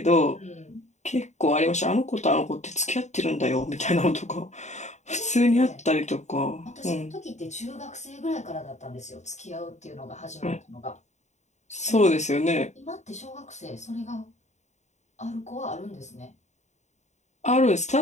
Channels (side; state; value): right; late; 0.34 ms